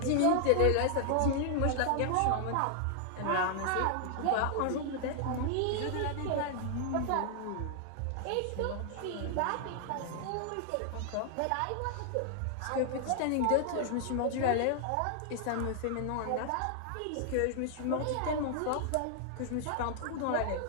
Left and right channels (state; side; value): different; both; correlation 0.00